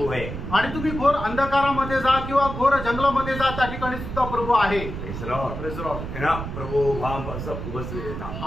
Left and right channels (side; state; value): right; noise; rumble, 7 dB below the sound